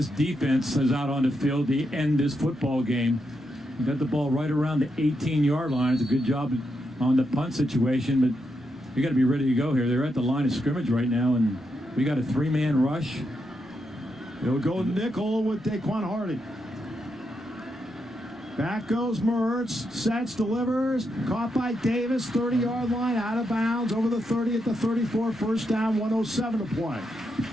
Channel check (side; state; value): both; normal; correlation 0.83